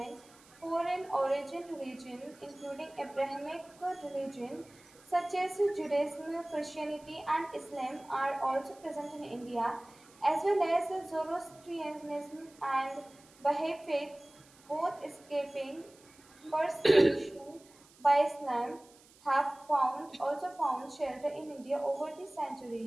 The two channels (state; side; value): noise; right; hiss, 26 dB below the sound